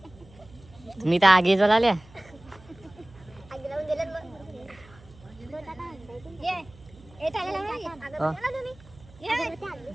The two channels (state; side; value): noise; right; hum, 23 dB below the sound